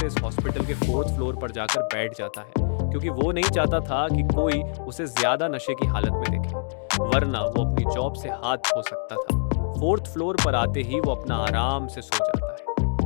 इस हॉस्पिटल के 4th फ्लोर पर जाकर बैठ जाता है, क्योंकि वो नहीं चाहता था कि कोई उसे ज्यादा नशे की हालत में देखे, वरना वो अपनी जॉब से हाथ धो सकता था। 4th फ्लोर पर आते ही वो अपना आराम से सो जाता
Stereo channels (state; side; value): silent; right; digital silence